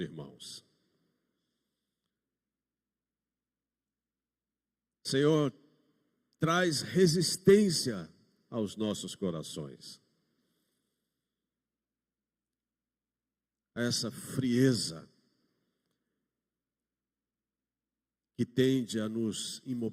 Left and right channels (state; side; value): identical; both; correlation 1.00